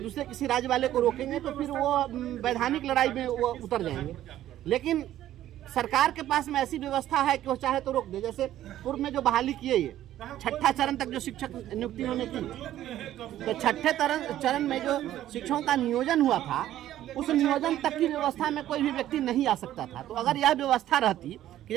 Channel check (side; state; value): left; quieter; 12.9 dB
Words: किसी राज्य वाले को रोकेंगे तो फिर वो वैधानिक लड़ाई में वो उतर जाएंगे। लेकिन सरकार के पास में ऐसी व्यवस्था है कि वो चाहे तो रोक दे। जैसे पूर्व में जो बहाली किए ये 6ठा चरण तक जो शिक्षक नियुक्ति होने की, तो 6ठे चरण में जो शिक्षकों का नियोजन हुआ था उस नियोजन तक की व्यवस्था में कोई भी व्यक्ति नहीं आ सकता था। तो अगर यह व्यवस्था रहती कि